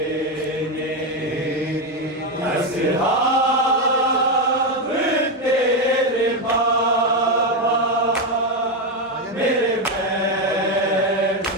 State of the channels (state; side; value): normal; both; correlation 0.08